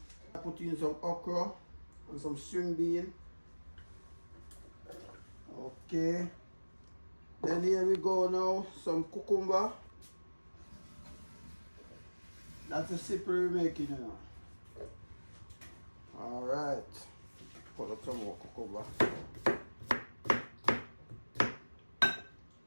I put in some okra and some string bean. Okay. Then here we go now, some cucumber. That's the soup we're making now. Alright. Put up some more cucumber.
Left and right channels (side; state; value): both; inverted; correlation -1.00